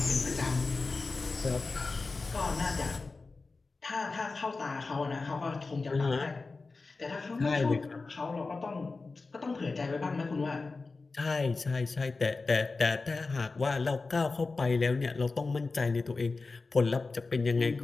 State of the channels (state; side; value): quieter; right; 3.9 dB